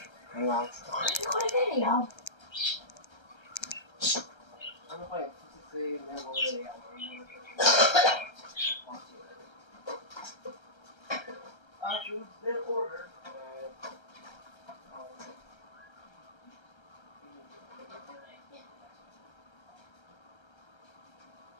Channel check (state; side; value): late; right; 1.3 ms